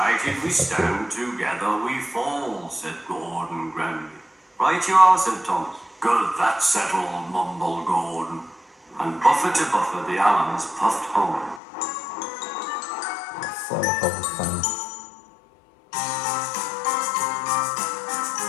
we stand, together we fall, said Gordon grandly. Right you are, said Thomas. Good, that's settled, mumbled Gordon. And buffer to buffer, the Allens puffed home. So wholesome.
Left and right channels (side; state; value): right; drops out; at 11.6 s